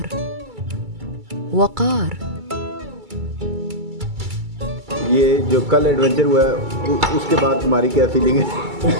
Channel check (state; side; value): late; left; 2.3 ms